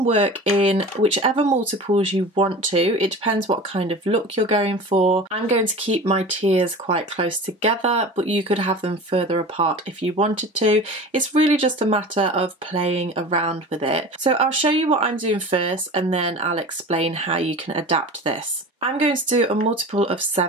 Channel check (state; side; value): normal; both; correlation 0.36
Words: work in whichever multiples you want to. It depends what kind of look you're going for. I'm going to keep my tiers quite close together, but you could have them further apart if you wanted to. It's really just a matter of playing around with it. So I'll show you what I'm doing first, and then I'll explain how you can adapt this. I'm going to do a multiple of